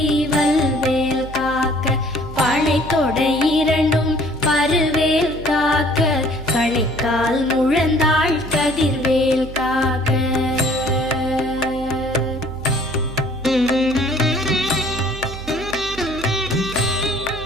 வல்வேல் காக்க பனைத்தொடை இரண்டும் பருவேல் காக்க கணைக்கால் முழந்தாள் கதிர்வேல் காக்க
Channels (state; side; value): noise; right; hum, 12 dB below the sound